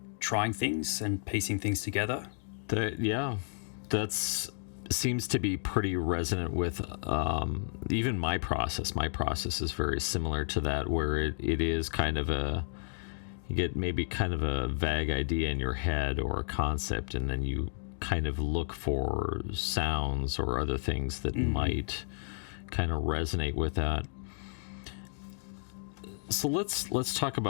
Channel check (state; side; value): silent; right; digital silence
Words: trying things and piecing things together. That's seems to be pretty resonant with even my process. My process is very similar to that, where it is kind of you get maybe kind of a vague idea in your head or a concept, and then you kind of look for sounds or other things that might kind of resonate with that. So let's talk